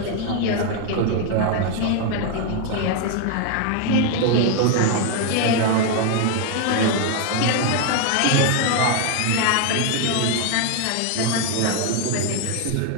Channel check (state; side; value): different; both; correlation 0.00